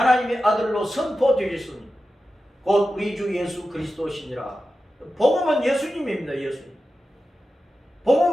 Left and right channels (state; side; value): normal; both; correlation 0.92